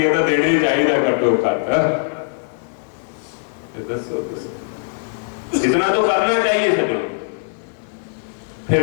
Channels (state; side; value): silent; right; digital silence